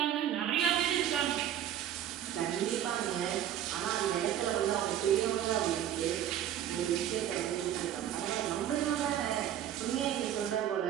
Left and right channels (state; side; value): quieter; left; 10.8 dB